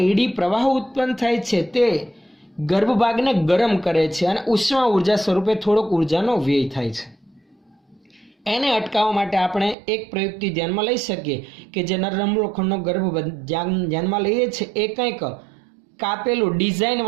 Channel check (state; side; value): drops out; left; at 9.8 s